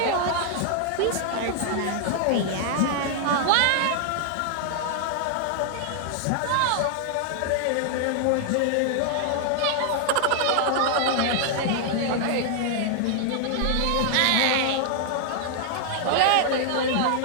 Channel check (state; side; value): different; both; correlation 0.00